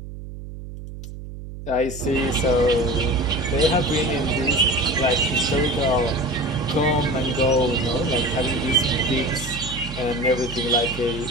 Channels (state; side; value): noise; right; hum, 11 dB below the sound